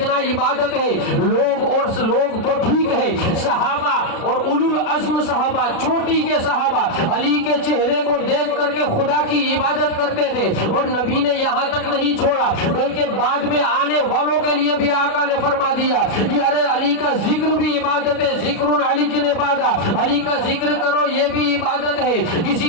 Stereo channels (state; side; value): late; right; 36 ms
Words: عبادت ہے۔ لوگ تو ٹھیک ہے، صحابہ اور اولو العزم صحابہ، چھوٹی کے صحابہ علی کے چہرے کو دیکھ کر کے خدا کی عبادت کرتے تھے، اور نبی نے یہاں تک نہیں چھوڑا بلکہ بعد میں آنے والوں کے لیے بھی آقا نے فرما دیا کہ ارے علی کا ذکر بھی عبادت ہے، ذکر علی کی عبادت، علی کا ذکر کرو یہ بھی عبادت ہے۔ کسی